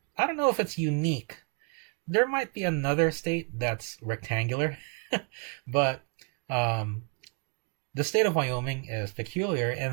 I don't know if it's unique. There might be another state that's rectangular, but the state of Wyoming is peculiar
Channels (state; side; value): quieter; left; 38.7 dB